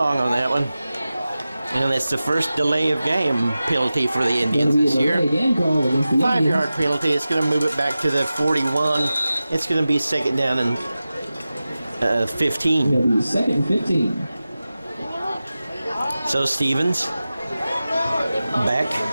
on that one. And it's the first delay of game penalty for the Indians this year. 5-yard penalty. It's going to move it back to the 41. It's going to be 2nd down and 15. It'll be 2nd and 15. So Stevens back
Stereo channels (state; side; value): inverted; both; correlation -0.95